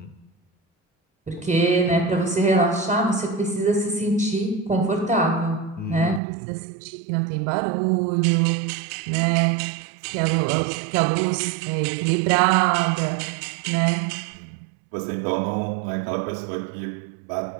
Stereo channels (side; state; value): left; drops out; at 6.2 s